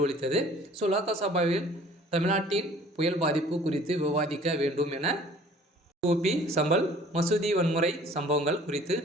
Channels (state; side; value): normal; both; correlation 0.51